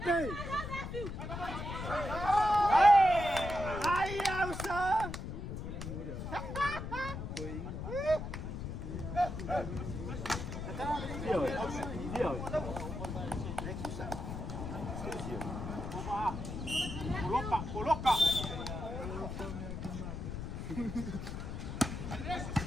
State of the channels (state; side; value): noise; left; rumble, 6 dB below the sound